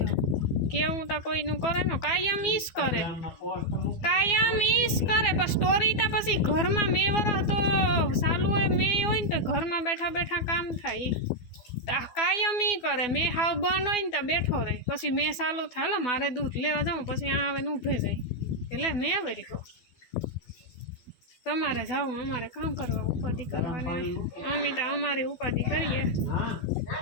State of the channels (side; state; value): right; late; 12 ms